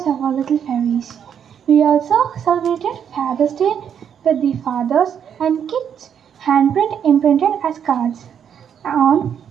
of our little fairies. We also celebrated Father's Day with the fathers and kids handprint imprinted as cards. On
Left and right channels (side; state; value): left; quieter; 8.3 dB